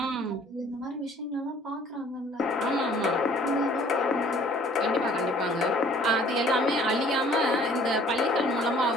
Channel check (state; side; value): normal; both; correlation 0.55